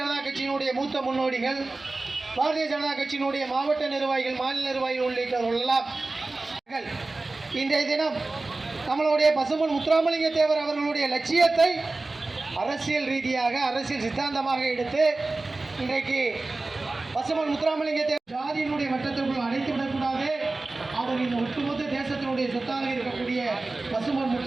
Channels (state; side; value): quieter; left; 3.3 dB